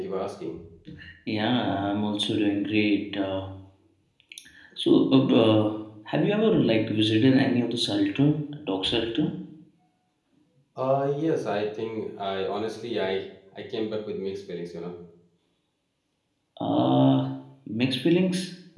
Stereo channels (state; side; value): identical; both; correlation 1.00